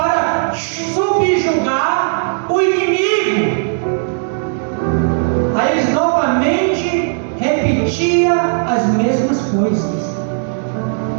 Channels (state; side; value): silent; left; digital silence